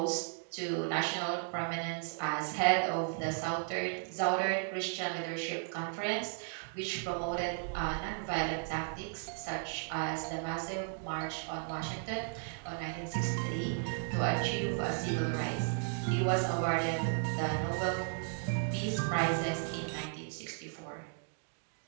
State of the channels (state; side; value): silent; left; 54 dB below the other